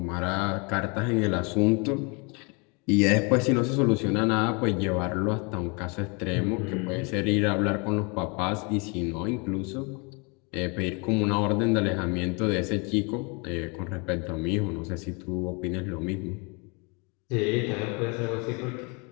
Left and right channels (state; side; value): quieter; right; 31.6 dB